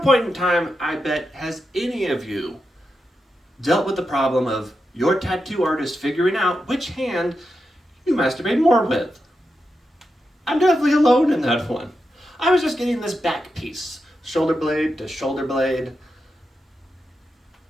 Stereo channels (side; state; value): both; normal; correlation 0.88